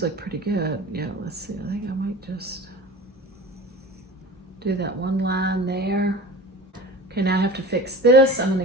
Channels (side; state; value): both; normal; correlation 0.36